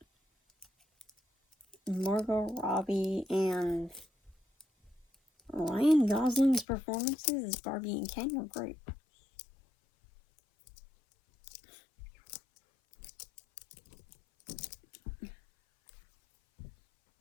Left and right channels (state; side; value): drops out; right; at 6.7 s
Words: Margot Robbie and Ryan Gosling's performances as Barbie and Ken were great.